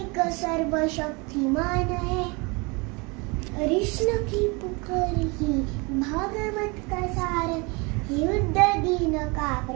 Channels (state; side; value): quieter; left; 28.4 dB